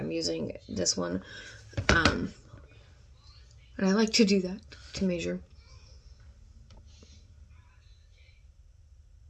using this one. And I like to do that to measure.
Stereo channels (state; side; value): identical; both; correlation 1.00